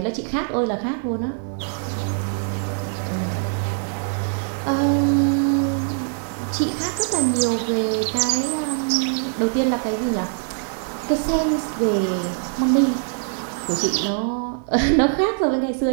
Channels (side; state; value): left; silent; 64 dB below the other